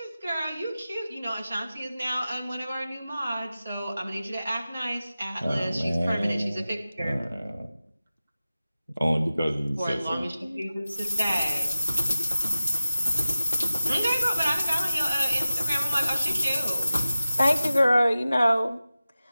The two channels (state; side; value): inverted; both; correlation -0.95